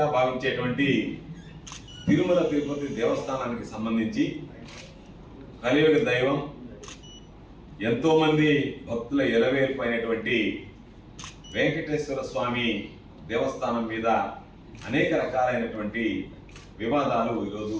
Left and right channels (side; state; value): both; identical; correlation 1.00